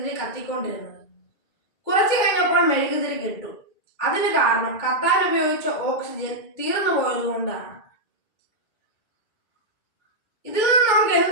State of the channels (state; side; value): late; right; 2.3 ms